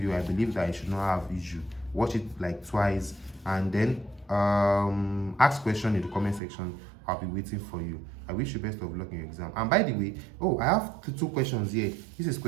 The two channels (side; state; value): left; drops out; at 6.4 s